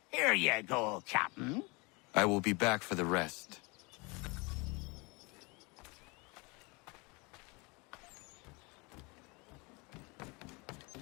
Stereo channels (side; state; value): right; quieter; 28.1 dB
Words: Here you go, Captain. I will be back for the rest.